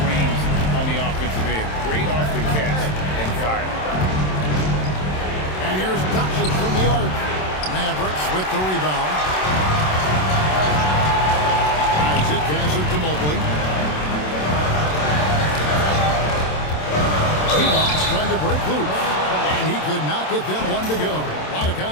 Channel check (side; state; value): right; late; 27 ms